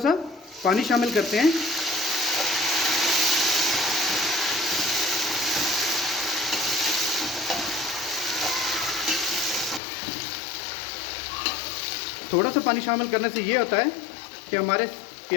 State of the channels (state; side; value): drops out; right; at 9.8 s